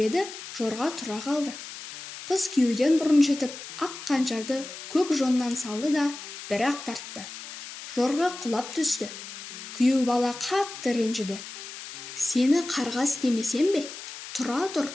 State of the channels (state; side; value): noise; left; hiss, 12 dB below the sound